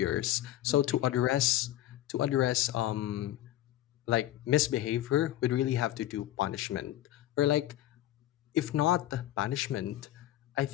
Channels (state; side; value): quieter; right; 13.8 dB